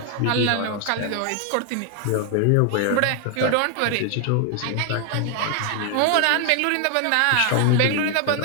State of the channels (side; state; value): both; different; correlation 0.00